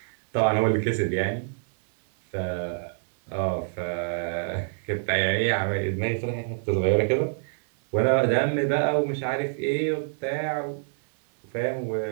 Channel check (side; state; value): left; silent; digital silence